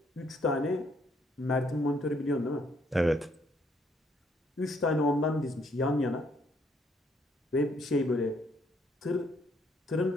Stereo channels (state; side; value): normal; both; correlation 0.69